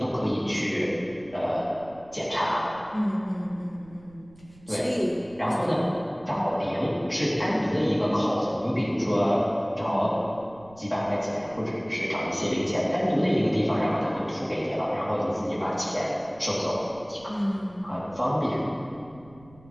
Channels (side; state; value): right; noise; rumble, 24 dB below the sound